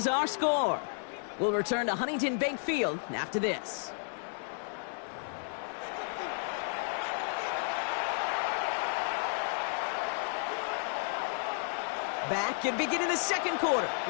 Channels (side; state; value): right; silent; 56 dB below the other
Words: our score. We'll return to Huntington Bank Field after this. Back and beginning the second quarter.